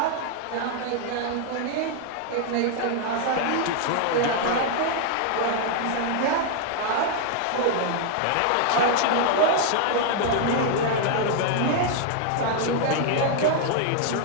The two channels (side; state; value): both; different; correlation 0.00